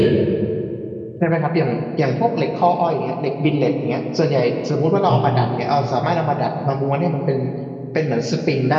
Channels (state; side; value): identical; both; correlation 1.00